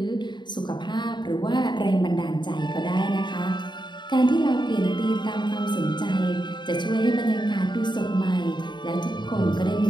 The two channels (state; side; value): late; right; 0.22 ms